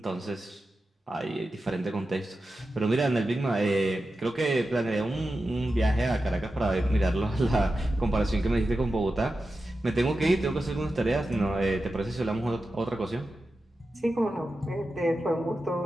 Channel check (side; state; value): both; normal; correlation 0.92